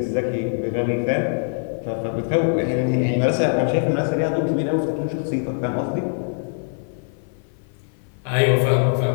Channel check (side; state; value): right; silent; 55 dB below the other